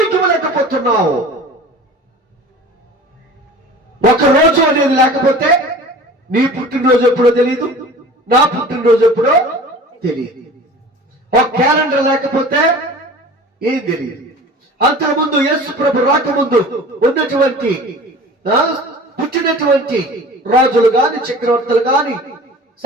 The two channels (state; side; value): normal; both; correlation 0.41